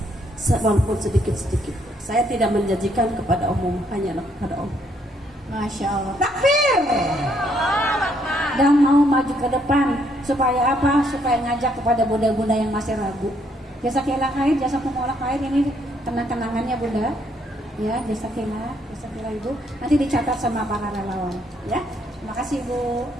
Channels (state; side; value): normal; both; correlation 0.70